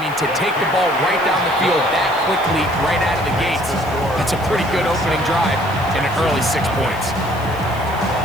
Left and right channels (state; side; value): noise; right; hiss, 21 dB below the sound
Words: to take the ball right down the field that quickly, right out of the gates, that's a pretty good opening drive and an early 6 points.